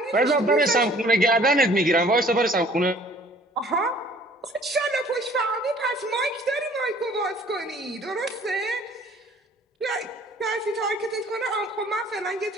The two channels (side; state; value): both; normal; correlation 0.54